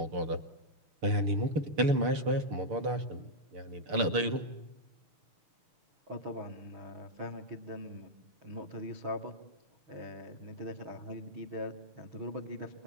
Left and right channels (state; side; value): late; left; 6.7 ms